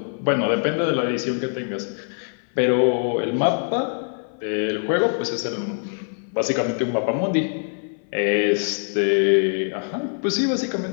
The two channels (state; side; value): silent; right; 57 dB below the other